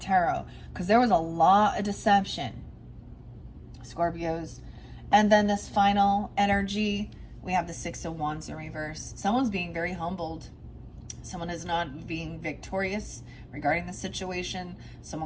because there was a lot of deception, Scorpios. And then this final energy, we have the 6 of Wands in reverse. Someone's being very humbled. Someone is not being victorious regarding the situation.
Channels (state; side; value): identical; both; correlation 1.00